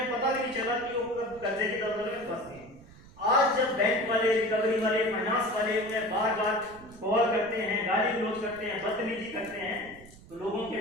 पता भी नहीं चला कि वो कर्जे की दलदल में फंस गए। आज जब बैंक वाले, रिकवरी वाले, फाइनेंस वाले उन्हें बार बार कॉल करते हैं, गाली गलौज करते हैं, बदतमीजी करते हैं, तो लोगों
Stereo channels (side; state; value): right; noise; rumble, 21 dB below the sound